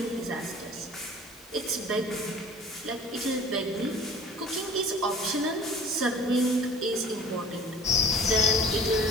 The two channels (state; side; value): normal; both; correlation 0.46